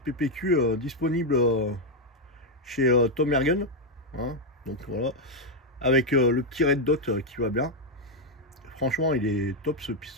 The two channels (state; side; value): normal; both; correlation 0.03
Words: disponible chez Tom Ergen, hein, donc voilà, avec le petit red dot qui va bien. Franchement il est top ce